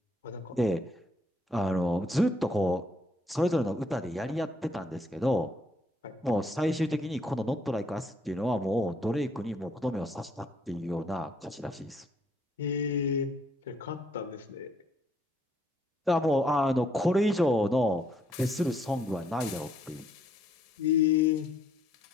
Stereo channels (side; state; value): both; normal; correlation 0.69